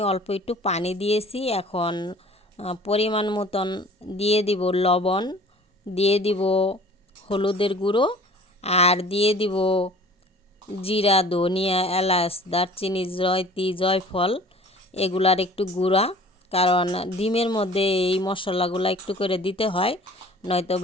অল্প একটু পানি দিয়েছি। এখন পরিমাণ মতন দিয়ে দিব লবণ, দিয়ে দিব হলুদের গুঁড়ো, আর দিয়ে দিব জিরা, ধনিয়া, এলাচ, দারচিনি, জয়ত্রী, জয়ফল এগুলার একটু গুঁড়া। কারণ ডিমের মধ্যে এই মশলাগুলো একটু করে দিতে হয়, নয়তো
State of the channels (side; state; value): both; normal; correlation 0.47